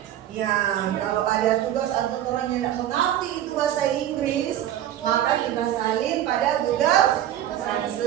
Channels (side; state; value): left; quieter; 11.8 dB